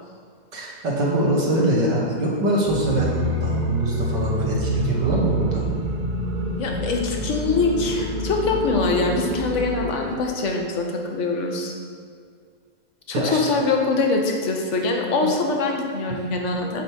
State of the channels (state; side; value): late; left; 2.0 ms